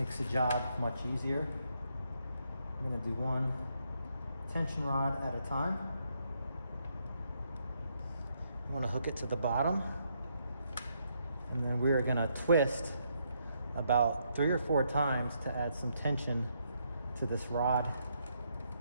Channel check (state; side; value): inverted; both; correlation -0.76